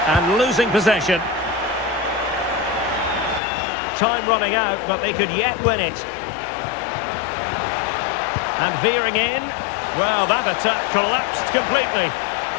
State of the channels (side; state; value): right; drops out; at 3.4 s